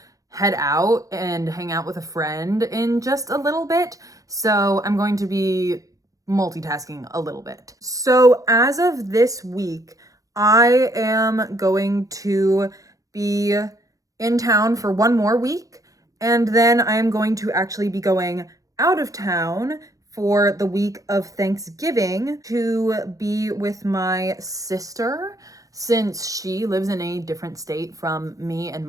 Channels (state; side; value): late; left; 0.17 ms